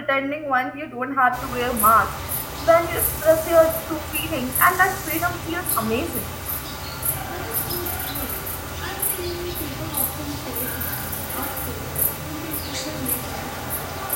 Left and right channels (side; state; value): both; identical; correlation 1.00